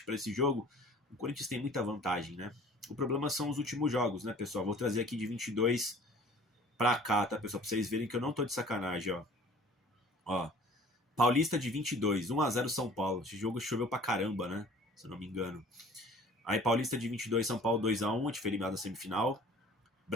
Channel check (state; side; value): normal; both; correlation 0.48